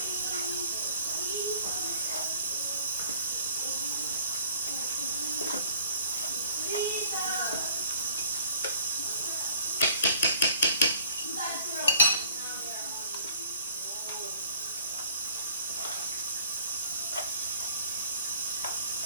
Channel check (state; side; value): inverted; both; correlation -0.57